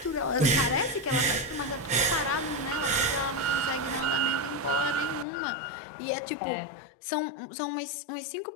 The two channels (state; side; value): drops out; right; at 5.2 s